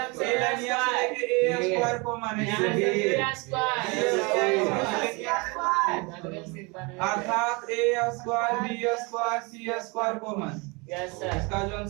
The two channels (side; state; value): left; quieter; 28.4 dB